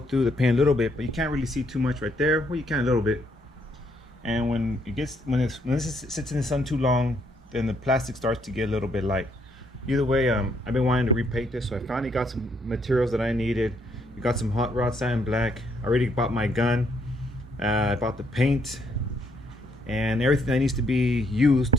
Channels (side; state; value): both; normal; correlation 0.72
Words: the paint a little bit, but you can't really see too much right there. Well, you can a little bit. And when this sits in the sun too long, then the plastic starts to get a little bit light. Either way, I've been wanting to repaint this, so I finally got some materials that I needed. We got some hot rod satin black. I already bought my gun. I bought the paint and everything that needs to be used